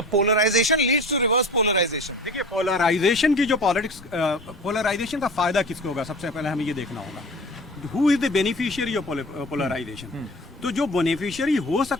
polarisation leads to reverse polarisation. देखिए पोलराइजेशन की जो पॉलिटिक्स, पोलराइजेशन का फायदा किसको होगा, सबसे पहले हमें ये देखना होगा who is the beneficiary of polarisation. तो जो बेनिफिशियरी हो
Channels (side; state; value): both; normal; correlation 0.38